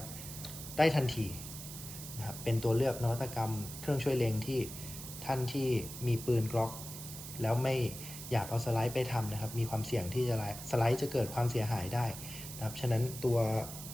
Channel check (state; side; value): noise; right; hiss, 10 dB below the sound